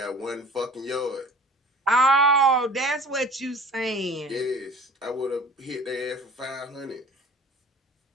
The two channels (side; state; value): both; normal; correlation 0.45